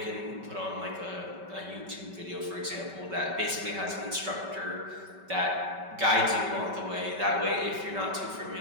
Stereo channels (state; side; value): late; left; 5.2 ms